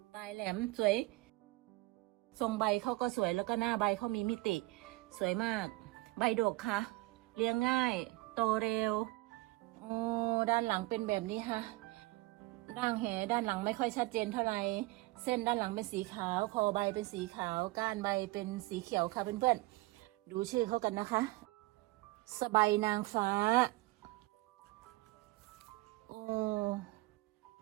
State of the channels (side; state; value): left; quieter; 21.1 dB